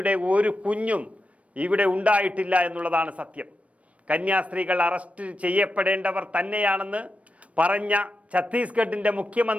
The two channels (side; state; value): left; late; 0.065 ms